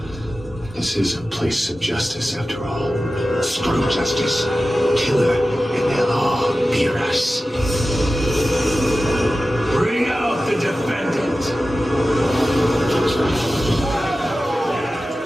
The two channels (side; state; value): both; normal; correlation 0.94